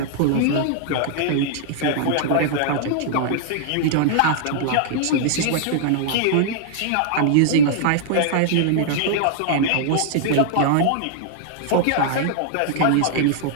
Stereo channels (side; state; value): both; different; correlation -0.01